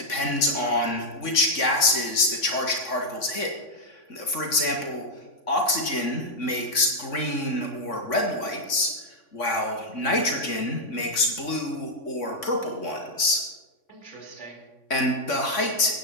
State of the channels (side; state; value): right; late; 3.5 ms